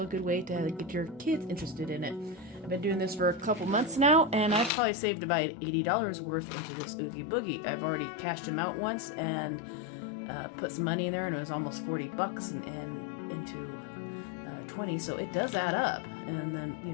good way to get your kids interested in it. I've been doing this for a couple months now, and I've probably saved about $80 worth into this Oogie Boogie. I've already cashed them out once and put some money in there, and it was almost 40 bucks and into 20, so it does add up. And then,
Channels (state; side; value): drops out; right; at 4.7 s